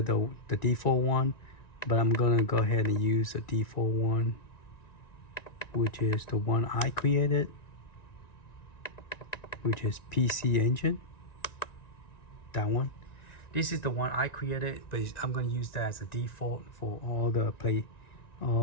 the default one, but I'm going to go ahead and use the default one, which is the one I created, which is PC Engine. That one. This is the one I created, but I'm going to use that as a default for all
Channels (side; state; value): right; late; 1.9 ms